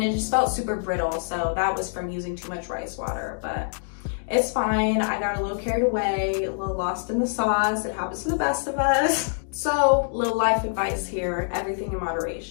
it just felt super brittle. So that was from using too much rice water, but it's fine. I got a little carried away, a little lost in the sauce. It happens to the best of us. So, little life advice here, everything in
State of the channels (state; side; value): silent; right; digital silence